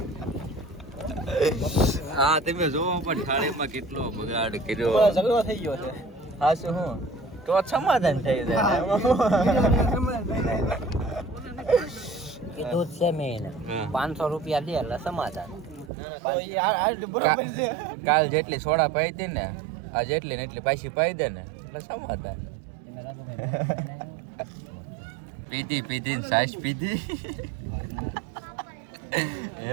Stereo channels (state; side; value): drops out; left; at 15.9 s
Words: હા તમે જોવો પણ થાળીમાં કેટલો બગાડ કર્યો, ઝઘડો થઈ ગયો છે. હા શું હું તો સમાધાન થઈ જાય. કીધું છે મેં 500 રૂપિયા દે એટલે સમાધાન. કાલ જેટલી સોડા પાઈ હતી ને આ જેટલી ને એટલી પાછી પાઈ દે ને એટલે સમાધાન. પીધી ને સાસ પીધી એ